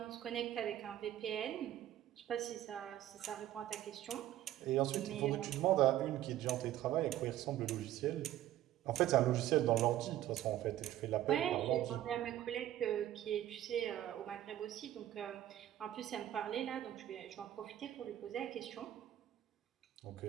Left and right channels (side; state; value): left; quieter; 12.9 dB